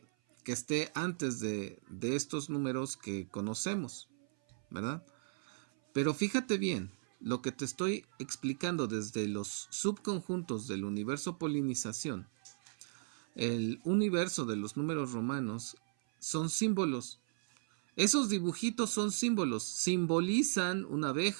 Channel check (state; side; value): silent; left; 54 dB below the other